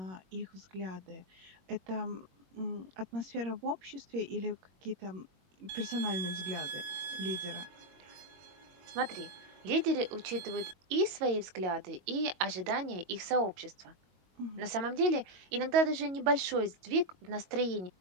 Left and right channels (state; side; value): late; left; 22 ms